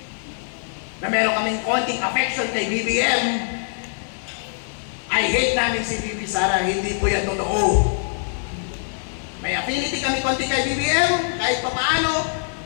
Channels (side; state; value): right; silent; 63 dB below the other